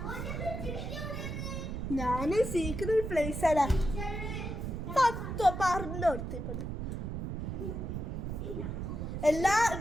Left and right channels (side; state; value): right; noise; rumble, 4 dB below the sound